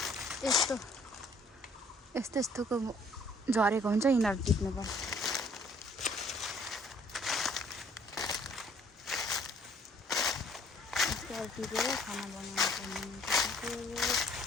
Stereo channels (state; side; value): normal; both; correlation 0.59